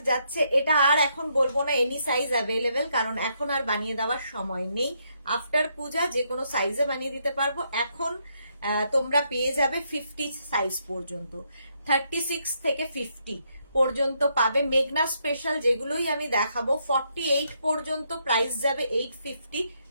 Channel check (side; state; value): both; inverted; correlation -0.75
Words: যাচ্ছে। এটা আর এখন বলবো না এনি সাইজ অ্যাভেলেবেল, কারণ এখন আর বানিয়ে দেওয়ার সময় নেই। আফটার পূজা যে কোনো সাইজে বানিয়ে দিতে পারবো। এখন তোমরা পেয়ে যাবে 50 সাইজ পর্যন্ত, 36 থেকে 50 পর্যন্ত পাবে। মেঘনা স্পেশাল যেগুলোই আমি দেখাবো 48 পর্যন্ত প্রাইস যাবে 850,